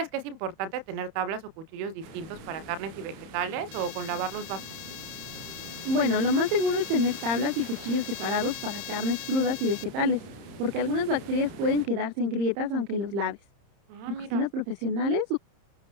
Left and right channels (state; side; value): late; left; 30 ms